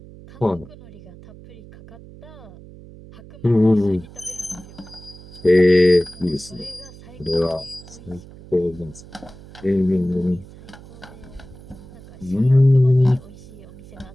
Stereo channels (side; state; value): right; noise; hum, 19 dB below the sound